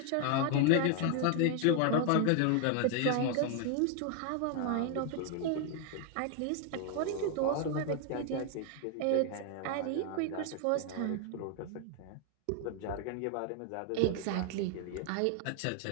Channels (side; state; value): both; different; correlation 0.00